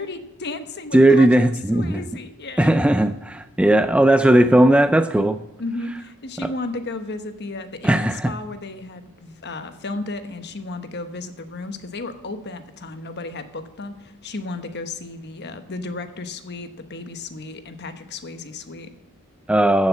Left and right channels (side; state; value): both; normal; correlation 0.87